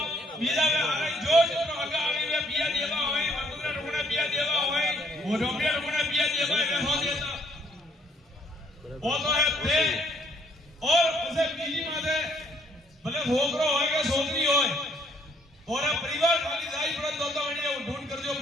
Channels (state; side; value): normal; both; correlation 0.66